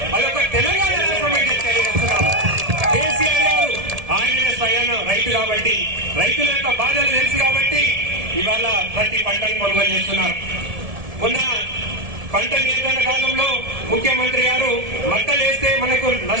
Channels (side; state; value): left; late; 1.7 ms